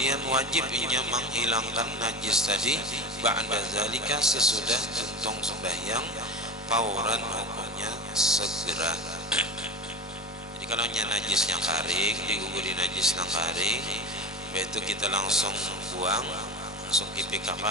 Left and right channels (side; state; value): both; normal; correlation 0.30